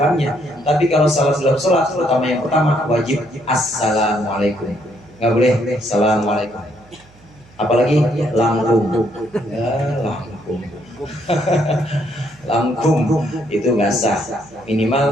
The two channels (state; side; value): noise; right; hum, 27 dB below the sound